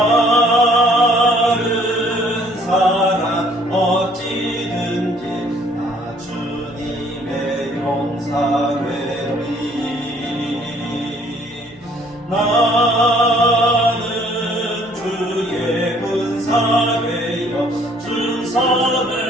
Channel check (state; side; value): noise; left; hum, 29 dB below the sound